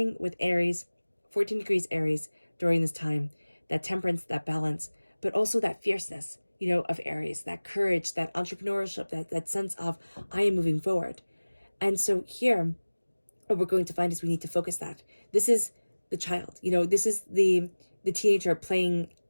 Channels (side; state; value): both; inverted; correlation -1.00